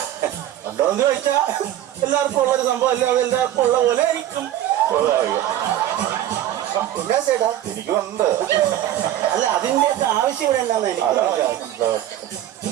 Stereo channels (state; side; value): quieter; left; 12.3 dB